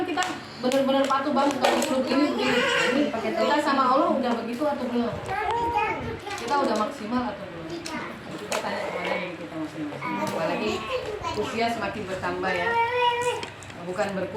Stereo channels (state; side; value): identical; both; correlation 1.00